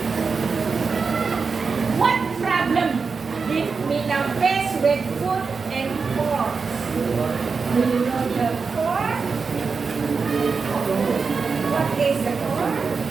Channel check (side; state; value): left; quieter; 5.0 dB